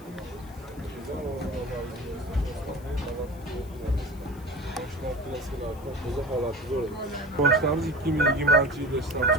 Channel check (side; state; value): left; noise; hiss, 25 dB below the sound